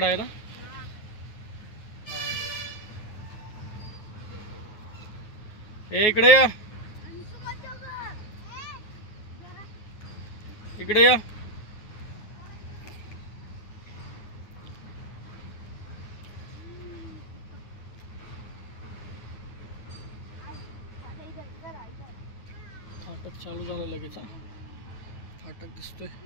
है ना. ए इकडे या, इकडे या. फाटक चालू झालं लगेच. फाटक दिसतोय.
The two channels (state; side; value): late; right; 9.3 ms